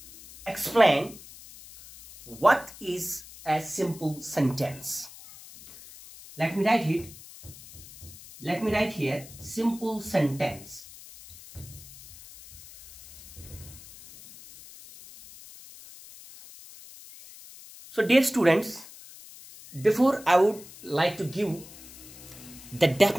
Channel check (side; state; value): left; noise; hiss, 18 dB below the sound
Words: explain what is a simple sentence. Let me write it. Let me write here simple sentence. So dear students, before I would like to give the